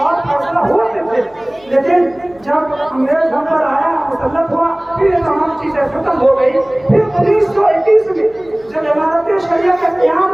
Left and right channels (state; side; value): noise; left; hum, 28 dB below the sound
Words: और फैसला होते थे। लेकिन जब अंग्रेज हम पर आया, मुसल्लत हुआ, फिर ये तमाम चीज़ें खत्म हो गई। फिर 1921 में जब इमारत शरिया का क़याम